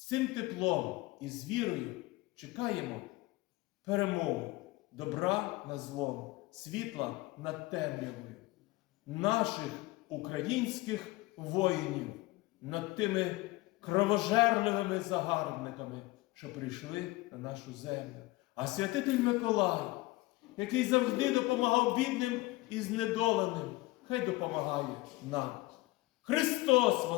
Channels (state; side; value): quieter; right; 20.3 dB